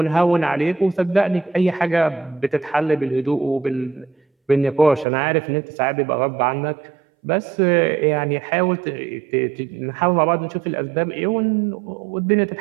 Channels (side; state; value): left; drops out; at 5.1 s